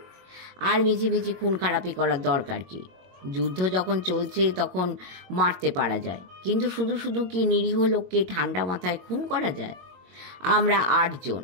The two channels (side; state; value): left; late; 22 ms